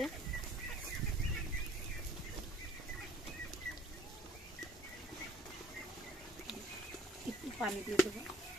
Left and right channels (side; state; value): both; normal; correlation 0.57